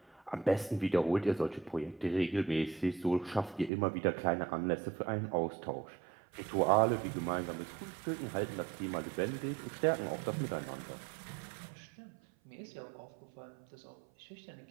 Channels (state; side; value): drops out; left; at 3.7 s